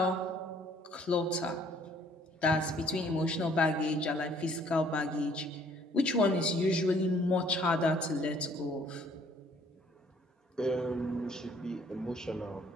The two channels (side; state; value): both; normal; correlation 0.60